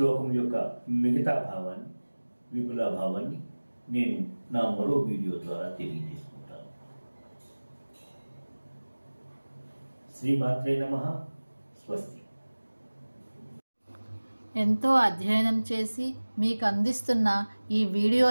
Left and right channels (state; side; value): inverted; both; correlation -1.00